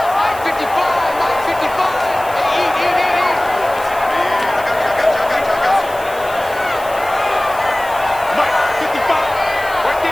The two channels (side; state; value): right; noise; hiss, 17 dB below the sound